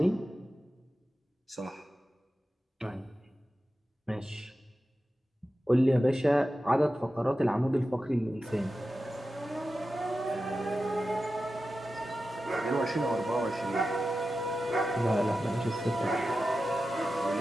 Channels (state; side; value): normal; both; correlation 0.93